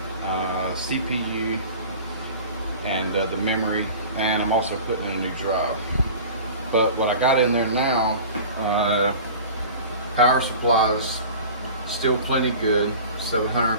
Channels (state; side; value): inverted; both; correlation -0.39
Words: CPU, and the memory, and I'm also putting in a new drive. But what I got in there now, power supply is still plenty good,